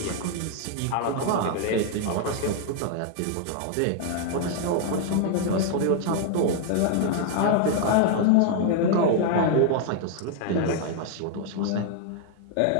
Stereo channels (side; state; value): both; different; correlation 0.00